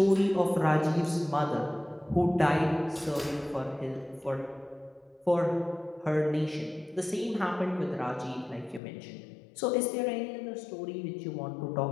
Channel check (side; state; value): right; drops out; at 8.8 s